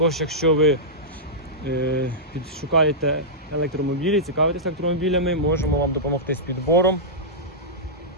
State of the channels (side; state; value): both; normal; correlation -0.12